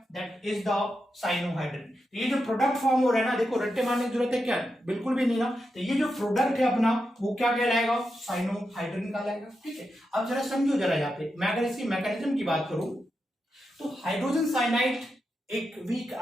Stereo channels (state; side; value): normal; both; correlation 0.87